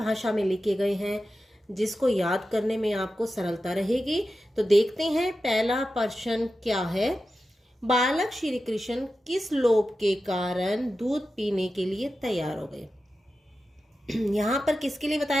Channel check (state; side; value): normal; both; correlation 0.92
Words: में लिखे गए हैं, जिसको याद करने में आपको सरलता रहेगी। तो देखते हैं पहला प्रश्न क्या है। बालक श्री कृष्ण किस लोभ के कारण दूध पीने के लिए तैयार हो गए। यहाँ पर किसके लिए